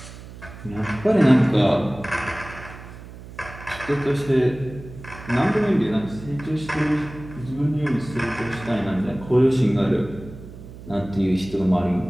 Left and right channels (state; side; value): noise; right; hum, 15 dB below the sound